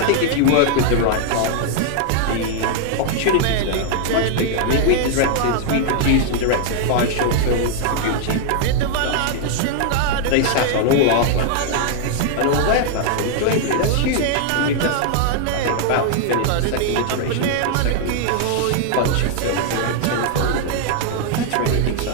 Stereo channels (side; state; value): both; different; correlation -0.01